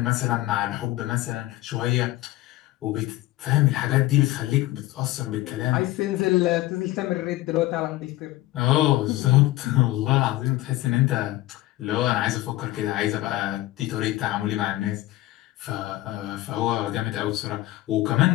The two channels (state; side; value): quieter; right; 16.8 dB